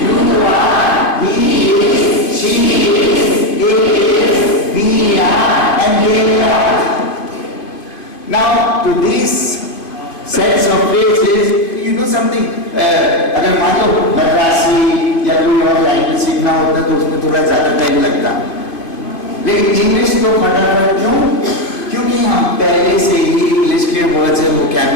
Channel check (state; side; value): late; right; 2.5 ms